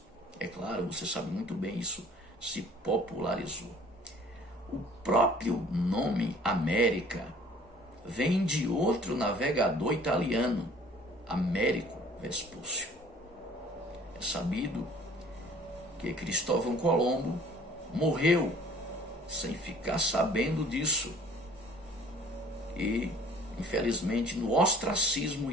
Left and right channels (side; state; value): both; normal; correlation 0.52